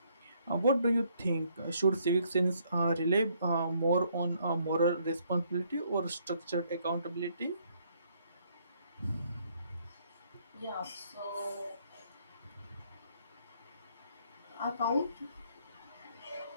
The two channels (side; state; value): both; inverted; correlation -0.68